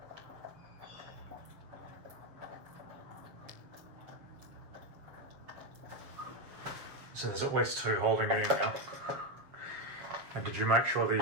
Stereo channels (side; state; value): left; late; 7.5 ms